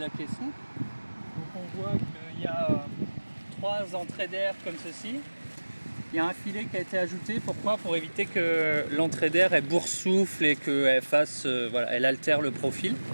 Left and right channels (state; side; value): inverted; both; correlation -1.00